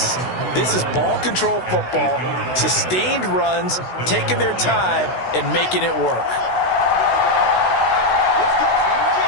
This is ball control football, sustained runs, taking their time and making it work.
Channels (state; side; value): late; right; 16 ms